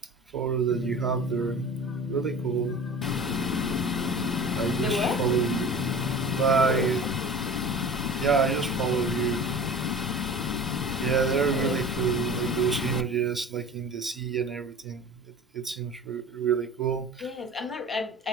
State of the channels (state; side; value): normal; both; correlation 0.38